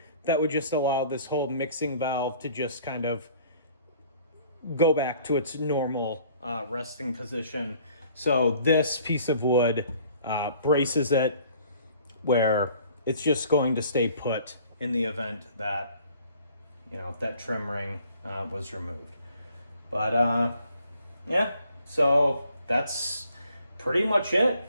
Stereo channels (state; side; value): inverted; both; correlation -0.57